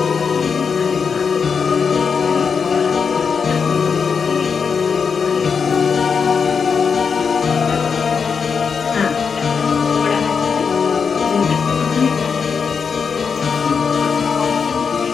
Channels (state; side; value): quieter; right; 5.9 dB